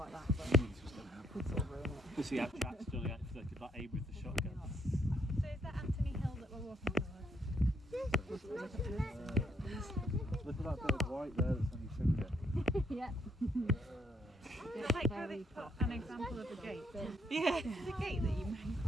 that, but this was going to happen. could sort of ruin it. You see how chat's still like, they could like aim with the shotgun. So is that Anthony Hill that we're walking towards? Look at that bit of white there that's on your finger. Yeah. It's like how they put an example of a gate. Yeah. The gate that you made.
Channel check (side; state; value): both; normal; correlation 0.72